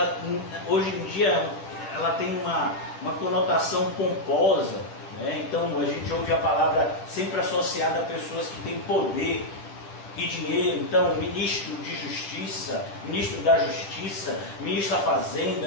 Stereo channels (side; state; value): right; late; 10 ms